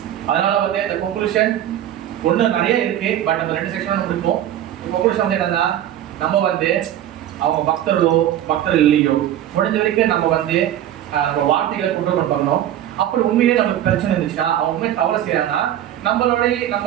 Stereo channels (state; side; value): quieter; left; 11.6 dB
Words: அதனால வந்து இந்த கன்க்ளூஷன் ஒண்ணு நிறைய இருக்கு. பட் நம்ம 2 செக்ஷன் இருக்கும். கன்க்ளூஷன் வந்து என்னன்னா, நம்ம வந்து அவங்க பக்தர்கள் இல்லையோ முடிஞ்ச வரைக்கும் நம்ம வந்து நம்ம வார்த்தைகளை கண்ட்ரோல் பண்ணணும். அப்படி உண்மையிலே நமக்கு பிரச்சனை இருந்துச்சுன்னா அவங்க உண்மையை தவறு செய்யறாங்கன்னா